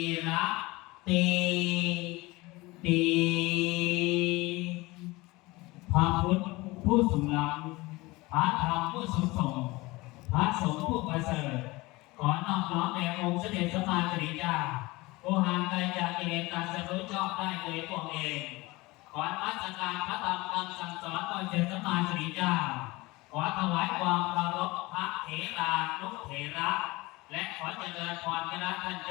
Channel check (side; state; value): right; quieter; 21.8 dB